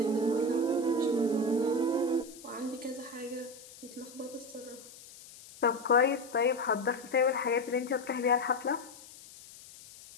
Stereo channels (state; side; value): noise; left; hiss, 19 dB below the sound